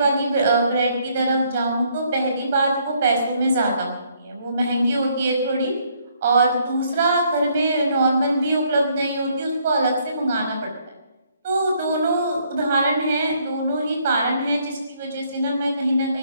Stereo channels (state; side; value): inverted; both; correlation -0.68